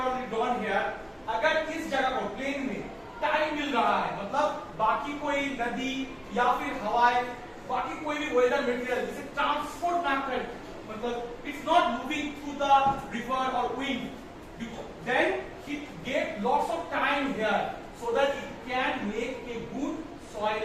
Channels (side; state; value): both; identical; correlation 1.00